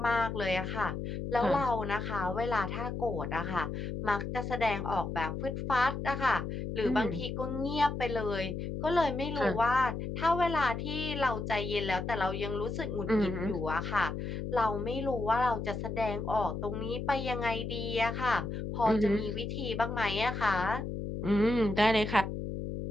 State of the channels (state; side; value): noise; left; hum, 4 dB below the sound